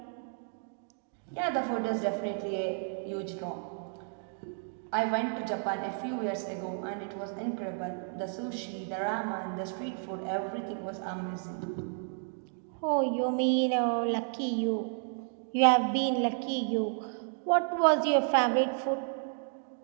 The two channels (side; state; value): left; silent; 56 dB below the other